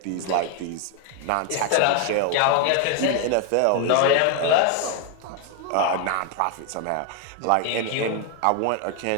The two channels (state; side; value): different; both; correlation 0.01